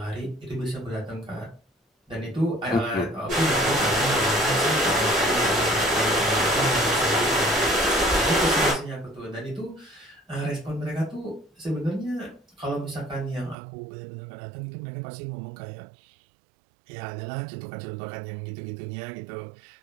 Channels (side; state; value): left; drops out; at 13.6 s